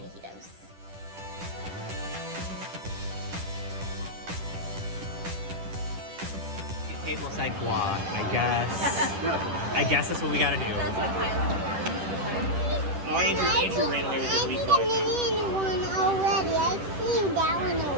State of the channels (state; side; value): late; left; 10 ms